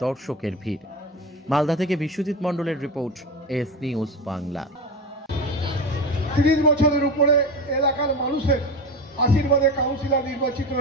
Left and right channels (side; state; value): both; normal; correlation 0.24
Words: দর্শকের ভিড়। মালদা থেকে বিশ্বজিৎ মণ্ডলের রিপোর্ট, এস নিউজ বাংলা। 30 বছরের উপরে এলাকার মানুষের আশীর্বাদে কাউন্সিলর নির্বাচিত